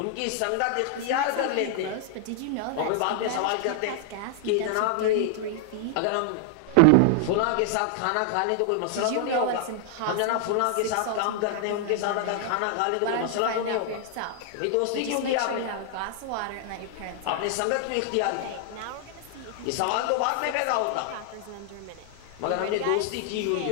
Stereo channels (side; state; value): both; different; correlation 0.00